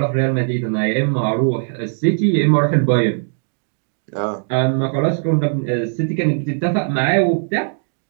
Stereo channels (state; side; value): silent; left; digital silence